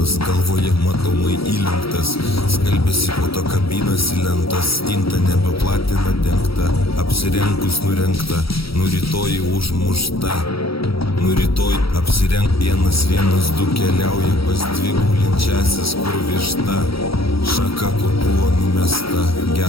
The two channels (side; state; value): right; late; 0.75 ms